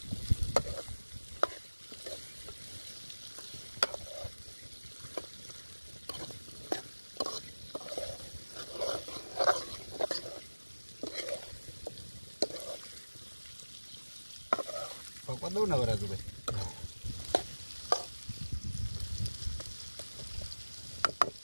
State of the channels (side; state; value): both; inverted; correlation -1.00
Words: પાકવા દઉં ને વરાજુભાઈ.